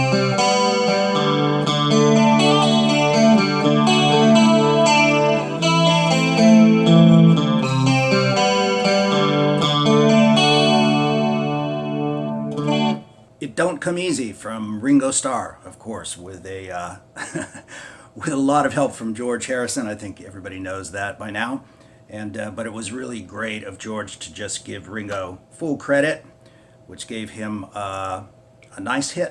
Don't Come Easy from Ringo Starr, of course, with a with a lot of help from George Harrison. I think everybody knows that by now. And but it was really great of George to just give Ringo full credit, which gave him a nice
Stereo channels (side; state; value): both; identical; correlation 1.00